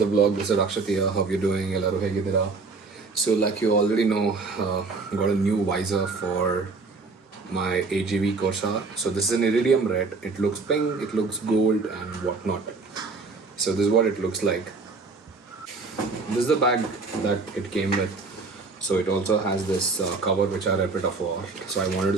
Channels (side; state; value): left; quieter; 4.0 dB